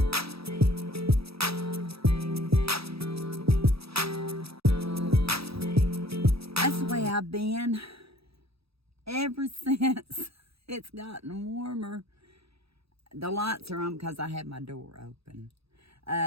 That's the way I've been ever since it's gotten warmer. The lights are on because I have my door open.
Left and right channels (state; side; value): late; left; 0.77 ms